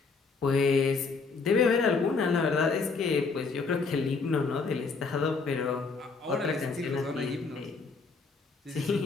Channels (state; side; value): quieter; right; 4.5 dB